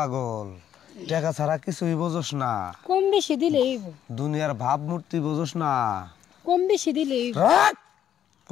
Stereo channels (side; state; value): right; quieter; 10.2 dB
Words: টাকা ছাড়া কিছুই বোঝস না। কম বেশি দিলেই দুনিয়ার ভাবমূর্তি বোঝস না। কম বেশি দিলেই